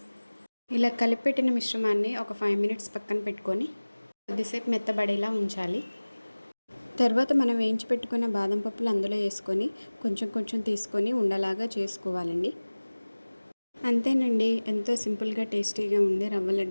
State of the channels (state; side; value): inverted; both; correlation -1.00